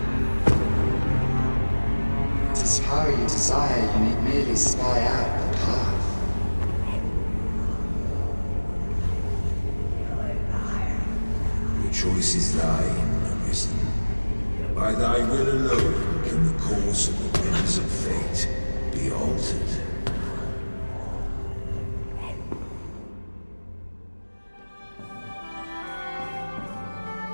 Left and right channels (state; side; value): inverted; both; correlation -1.00